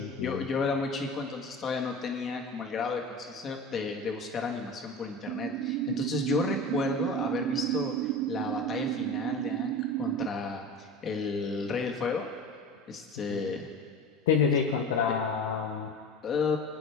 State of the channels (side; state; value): both; normal; correlation 0.33